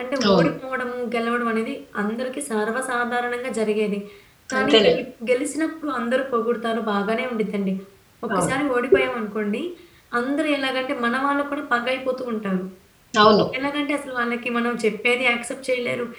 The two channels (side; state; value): both; identical; correlation 1.00